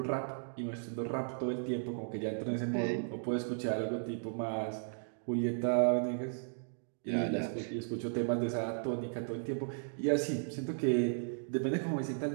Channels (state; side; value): silent; left; digital silence